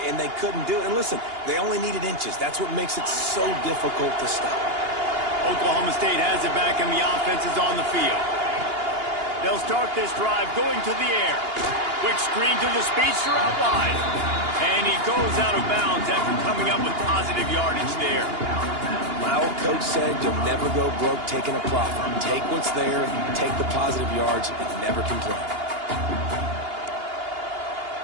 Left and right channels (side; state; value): left; late; 2.8 ms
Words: they couldn't do it. And listen, they only needed inches. That's what makes it so difficult to stop. Oklahoma State has it back, and the offense is on the field. They'll start this drive going to the air. Quick screen to the speedster out wide. And he goes out of bounds after coming up with positive yardage there. My old coach said you'll never go broke taking a profit. Take what's there, take the positive yards, and never complain.